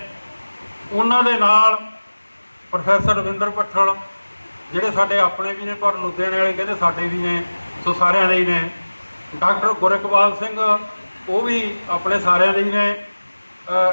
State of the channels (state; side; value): inverted; both; correlation -1.00